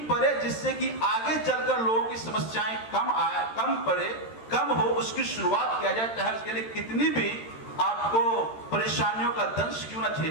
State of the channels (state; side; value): late; right; 13 ms